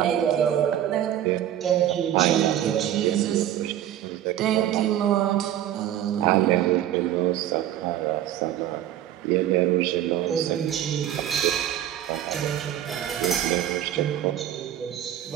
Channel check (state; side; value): quieter; left; 11.6 dB